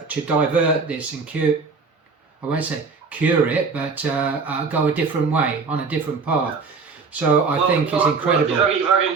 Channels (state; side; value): quieter; left; 4.8 dB